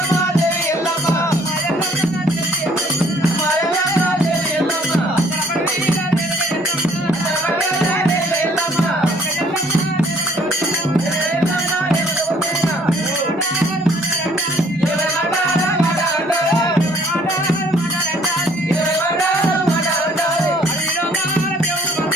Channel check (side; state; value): both; normal; correlation 0.60